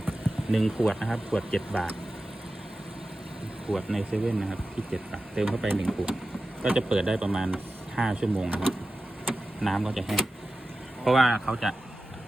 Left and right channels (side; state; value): both; normal; correlation 0.94